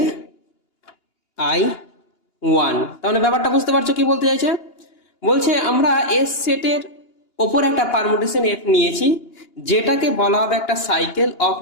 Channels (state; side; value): late; right; 2.9 ms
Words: আই ওয়ান। তাহলে ব্যাপারটা বুঝতে পারছো কি বলতে চাইছে? বলছে আমরা এস সেটের ওপর একটা পারমুটেশন এফ নিয়েছি, যেটাকে বলা হবে একটা cycle of